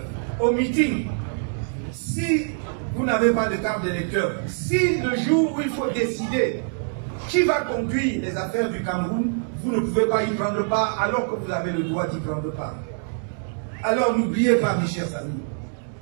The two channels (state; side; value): silent; left; 62 dB below the other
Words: au meeting si vous n'avez pas de carte d'électeur? Si le jour où il faut décider qui va conduire les affaires du Cameroun, vous ne pouvez pas y prendre part alors que vous avez le droit d'y prendre part. Alors n'oubliez pas, mes chers amis,